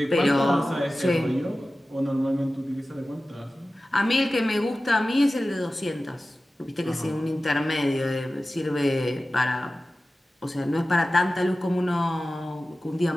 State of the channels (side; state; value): both; normal; correlation 0.95